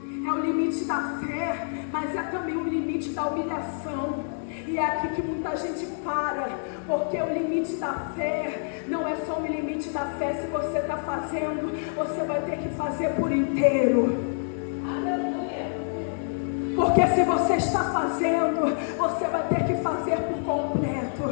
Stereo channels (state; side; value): silent; right; digital silence